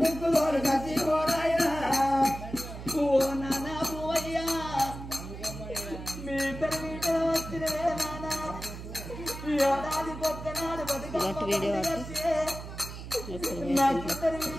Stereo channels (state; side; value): noise; right; hum, 10 dB below the sound